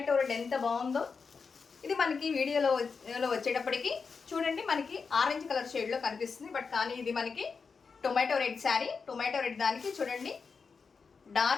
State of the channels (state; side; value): quieter; right; 5.2 dB